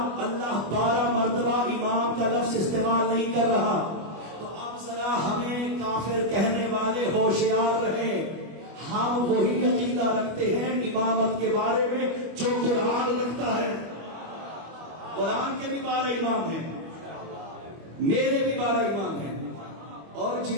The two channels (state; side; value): late; left; 25 ms